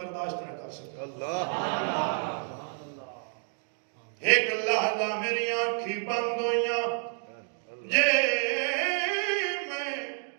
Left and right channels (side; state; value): left; silent; 56 dB below the other